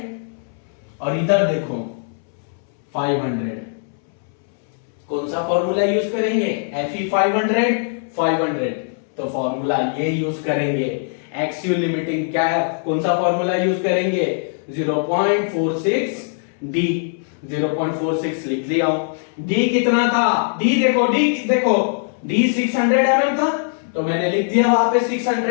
और इधर देखो 500, कौन सा फॉर्मूला यूज करेंगे, Fe 500, तो फॉर्मूला ये यूज करेंगे। एक्सियल लिमिटिंग क्या, कौन सा फॉर्मूला यूज करेंगे 0.46 डी, 0.46 लिख लिया हूं। डी कितना था, डी देखो, डी 600 mm था, तो मैंने लिख दिया वहां पे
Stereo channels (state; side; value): silent; right; 64 dB below the other